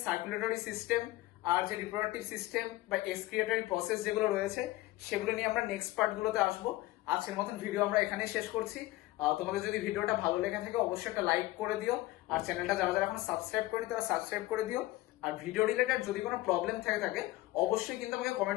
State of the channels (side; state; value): right; quieter; 18.0 dB